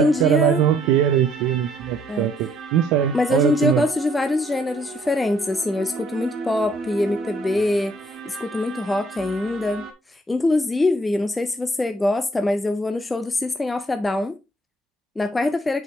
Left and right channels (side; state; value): both; normal; correlation 0.65